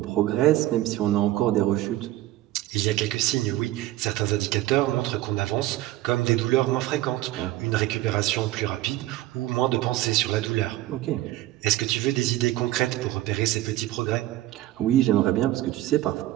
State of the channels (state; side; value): quieter; left; 15.8 dB